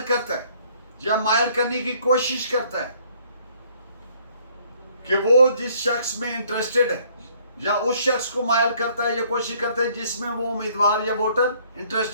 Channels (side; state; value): both; inverted; correlation -0.62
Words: کرتا ہے یا مائل کرنے کی کوشش کرتا ہے کہ وہ جس شخص میں انٹرسٹڈ ہے، یا اس شخص کو مائل کرتا ہے یا کوشش کرتا ہے جس میں وہ امیدوار یا ووٹر